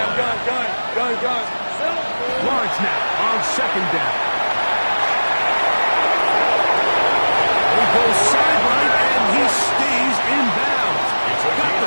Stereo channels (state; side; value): inverted; both; correlation -1.00